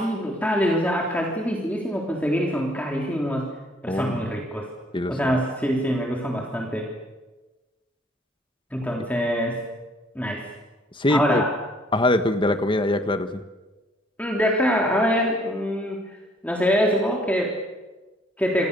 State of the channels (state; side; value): normal; both; correlation 0.62